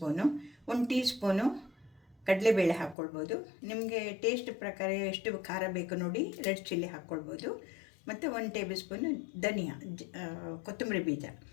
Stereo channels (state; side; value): drops out; right; at 3.0 s